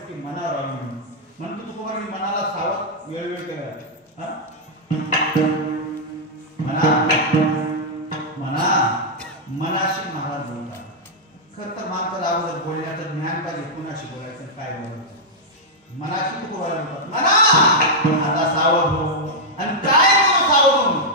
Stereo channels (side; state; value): both; normal; correlation -0.05